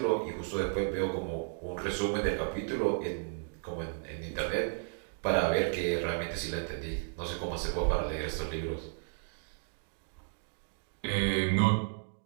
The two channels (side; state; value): left; silent; digital silence